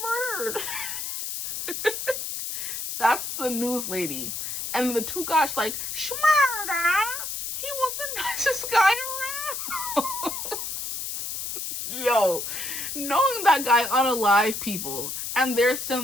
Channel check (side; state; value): left; noise; hiss, 5 dB below the sound